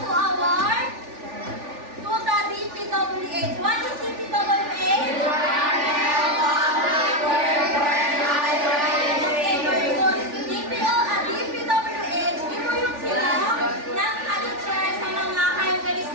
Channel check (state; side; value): late; left; 3.4 ms